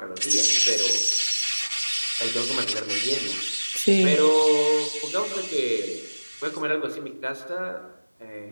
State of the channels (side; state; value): both; inverted; correlation -1.00